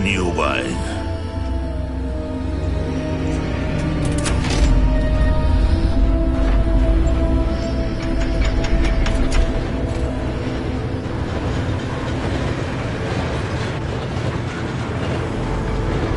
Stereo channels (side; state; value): both; identical; correlation 1.00